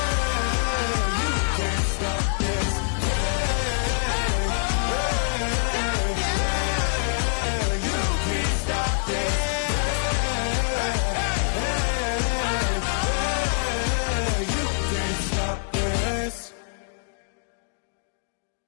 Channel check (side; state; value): right; silent; digital silence